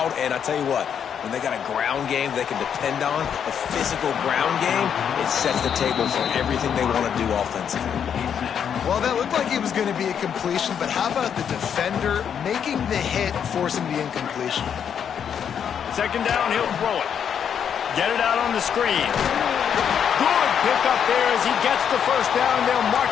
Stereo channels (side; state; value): right; quieter; 8.1 dB